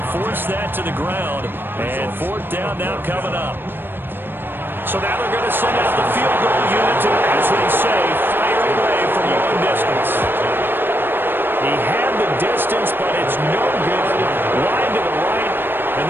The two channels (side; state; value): left; late; 0.098 ms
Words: force that to the ground. And 4th down now coming up. So now they're going to send out the field goal unit to, as they say, fire away from long distance. He had the distance, but it's no good. Wide to the right, and